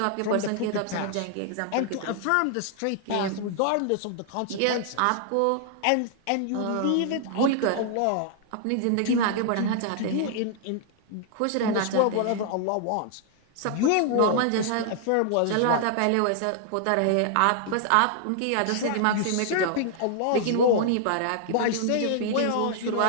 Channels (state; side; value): different; both; correlation -0.01